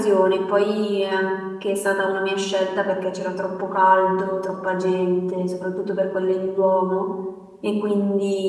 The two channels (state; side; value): identical; both; correlation 1.00